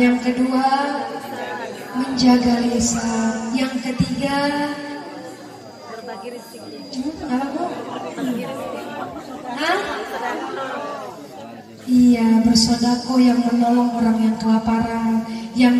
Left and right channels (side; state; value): both; identical; correlation 1.00